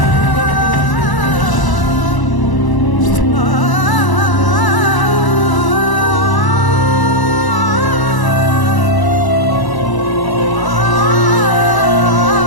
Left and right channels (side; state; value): right; late; 1.0 ms